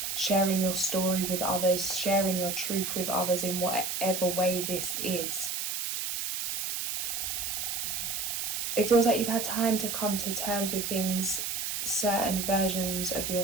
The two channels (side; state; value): right; noise; hiss, 2 dB below the sound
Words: sharing your story with others, sharing your truth with others in whatever way this is. It feels like you've had time to come to terms with things, certain versions of